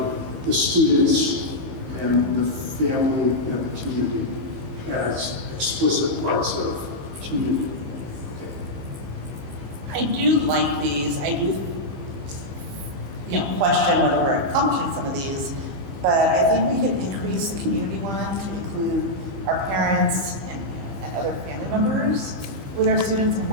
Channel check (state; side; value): late; left; 15 ms